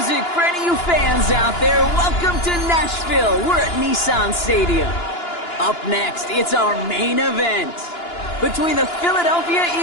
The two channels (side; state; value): right; late; 2.9 ms